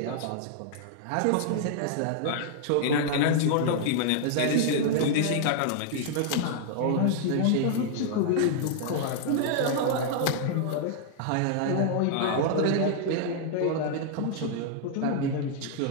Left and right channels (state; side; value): different; both; correlation -0.01